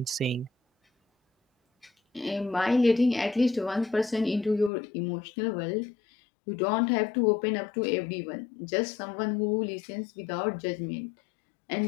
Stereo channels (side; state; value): right; drops out; at 4.7 s